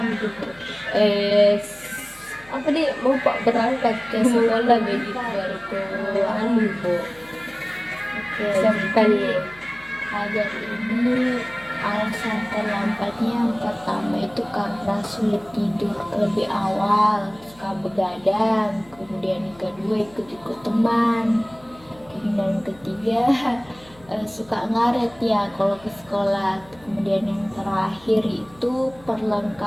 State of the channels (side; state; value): left; noise; hum, 25 dB below the sound